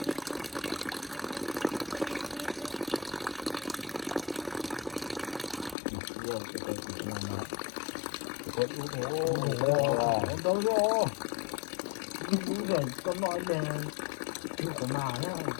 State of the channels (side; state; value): right; drops out; at 5.8 s